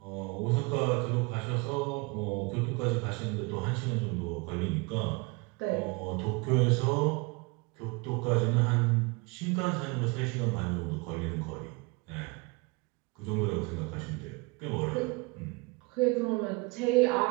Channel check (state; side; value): quieter; left; 28.1 dB